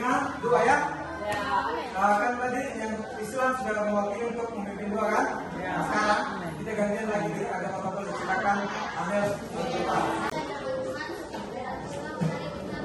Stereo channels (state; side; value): identical; both; correlation 1.00